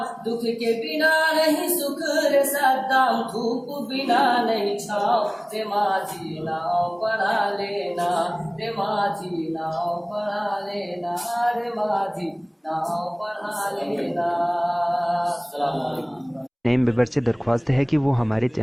दुख के बिना नहीं सुख रे सद्दाम। धूप बिना नहीं छाँव, रे माझी नाव पढ़ा लेना, रे माझी नाव पढ़ा लेना, रे माझी नाव पढ़ा लेना। नए मेंबर से दरख्वास्त है कि वो हमारे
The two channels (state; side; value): identical; both; correlation 1.00